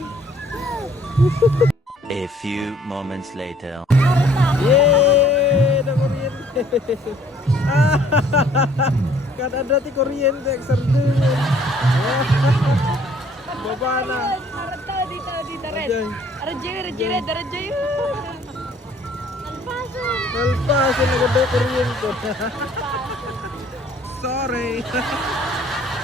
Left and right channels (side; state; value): both; normal; correlation 0.59